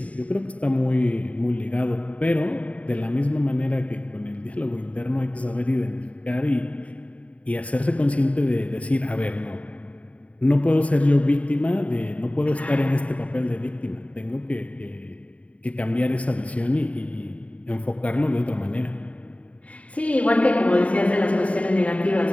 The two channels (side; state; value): right; late; 0.066 ms